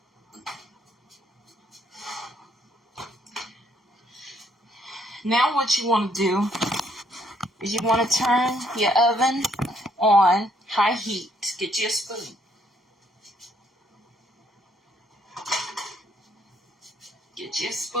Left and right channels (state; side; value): normal; both; correlation 0.69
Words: Now what you want to do is you want to turn your oven on high heat. Get you a spoon. Get you a